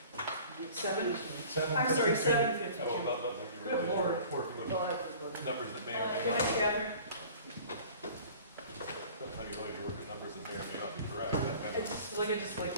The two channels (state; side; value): inverted; both; correlation -0.46